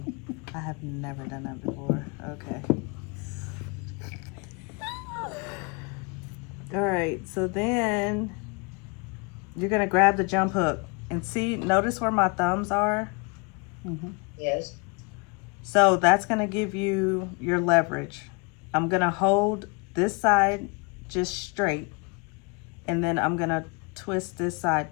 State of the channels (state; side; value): quieter; right; 31.3 dB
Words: I have never done that before. Okay. All right, so then you're gonna grab the jump hook and see, notice where my thumbs are? Mm-hmm. Yes. So that's gonna give you your leverage. I'm gonna hold this side just straight, and then I'm gonna twist this side